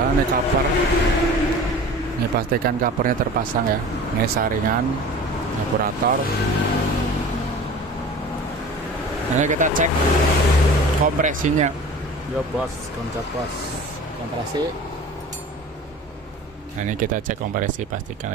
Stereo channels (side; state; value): both; normal; correlation 0.40